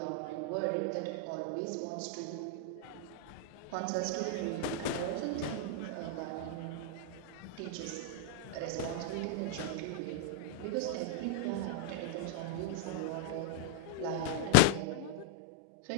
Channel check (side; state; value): both; different; correlation -0.01